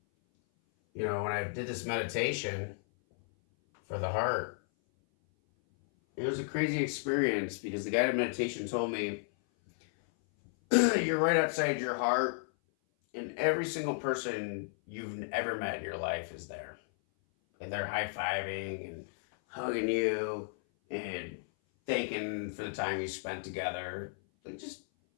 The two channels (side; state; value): right; silent; 56 dB below the other